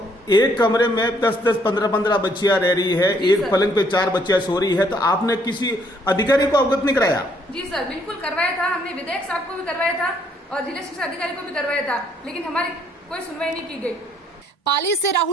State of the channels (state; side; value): normal; both; correlation 0.67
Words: एक कमरे में 10-10, 15-15 बच्चियां रह रही है, एक पलंग पे 4 बच्चियां सो रही है, तो आपने किसी अधिकारी को अवगत नहीं कराया? जी सर, बिल्कुल करवाया था। हमने विधायक साहब को भी करवाया था और जिला शिक्षा अधिकारी को भी करवाया था, लेकिन हमारी कोई सुनवाई नहीं की गई। पाली से